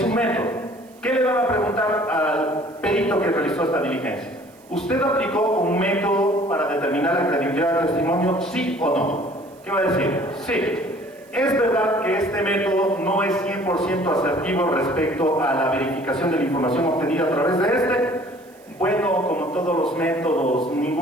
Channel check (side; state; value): right; noise; hiss, 29 dB below the sound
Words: un método. ¿Qué le van a preguntar al perito que realizó esta diligencia? ¿Usted aplicó un método para determinar la credibilidad del testimonio, sí o no? ¿Qué va a decir? Sí. ¿Es verdad que este método no es 100% asertivo respecto a la verificación de la información obtenida a través de este? Bueno, como todos los métodos,